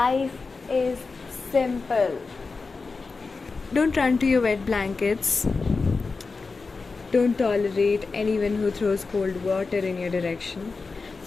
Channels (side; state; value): right; quieter; 4.2 dB